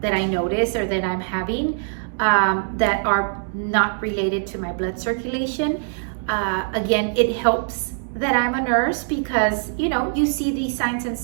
I notice or that I'm having that are not related to my blood circulation. Again, it helps that I'm a nurse because, you see these signs and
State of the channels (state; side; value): silent; left; digital silence